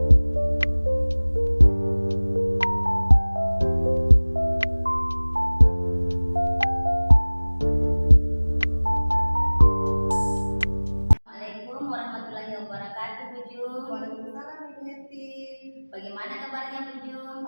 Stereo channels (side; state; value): both; inverted; correlation -1.00